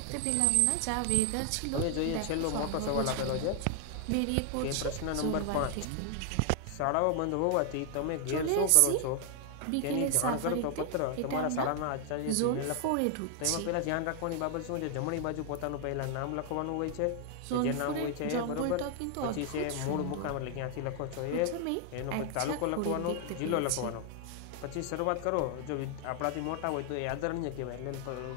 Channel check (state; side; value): different; both; correlation 0.00